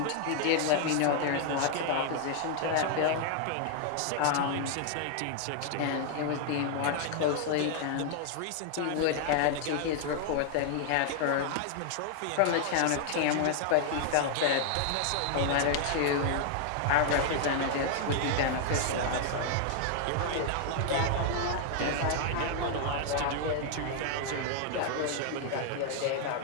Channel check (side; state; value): both; different; correlation 0.00